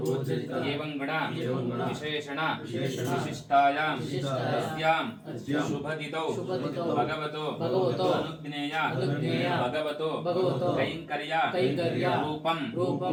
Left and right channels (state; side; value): identical; both; correlation 1.00